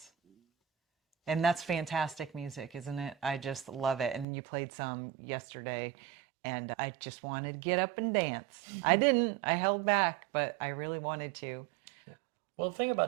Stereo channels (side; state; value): left; drops out; at 4.2 s